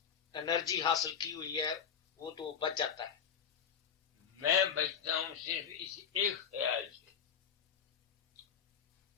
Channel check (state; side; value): quieter; right; 7.6 dB